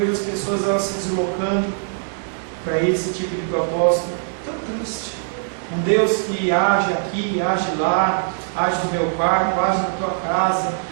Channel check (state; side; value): silent; left; digital silence